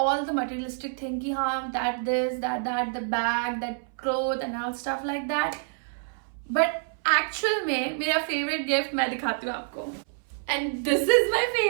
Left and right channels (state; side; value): silent; left; 60 dB below the other